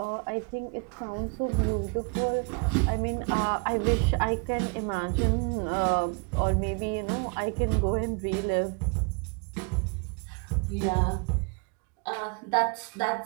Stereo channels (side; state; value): left; quieter; 34.1 dB